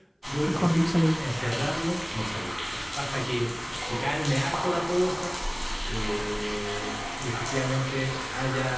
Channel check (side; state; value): both; identical; correlation 1.00